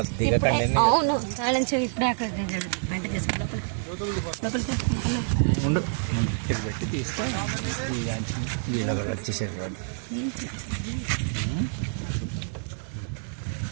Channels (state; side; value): silent; left; digital silence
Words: అవును, కానించి ఇప్పుడే అక్కడ వంట చేసుకున్నాం. ఉండు పెట్టి తీస్తే వీళ్ళ కూడా వచ్చేసారు కాదు.